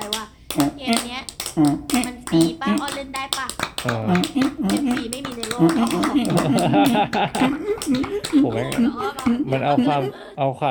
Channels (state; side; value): identical; both; correlation 1.00